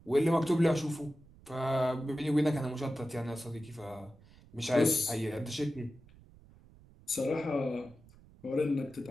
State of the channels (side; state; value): right; noise; rumble, 24 dB below the sound